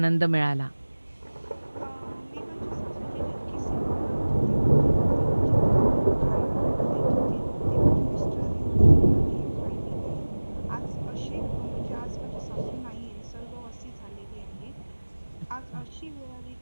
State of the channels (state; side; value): inverted; both; correlation -1.00